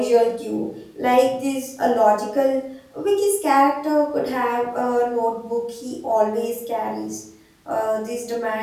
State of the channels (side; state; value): both; identical; correlation 1.00